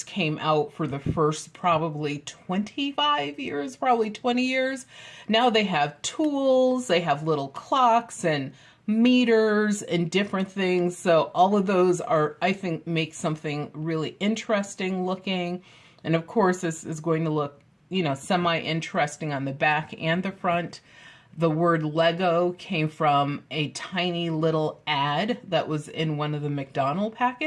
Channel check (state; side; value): identical; both; correlation 1.00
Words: came out for the first probably 25 years, probably 20 years. Now they have tools, they have little clocks and meters and different things. So all of those are, I think, make something really interesting looking. And of course, this is going to look, semi-interesting on the back and the front. The word Lego came from a tiny little ad that was in one of the McDonald's